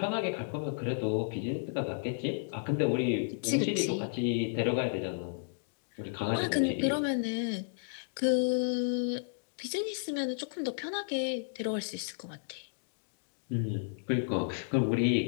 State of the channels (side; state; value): right; silent; digital silence